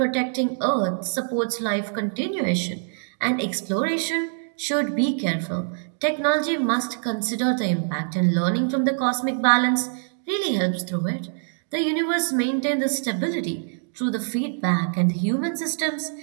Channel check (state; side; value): silent; left; digital silence